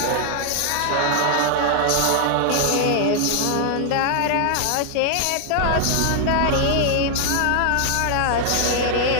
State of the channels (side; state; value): both; different; correlation 0.00